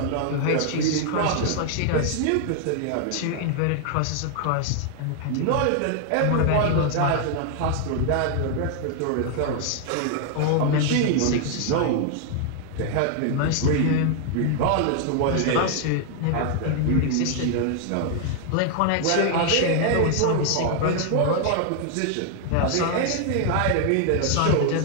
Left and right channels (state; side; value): different; both; correlation 0.00